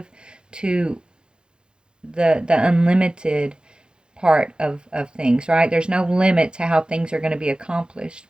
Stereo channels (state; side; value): late; left; 0.049 ms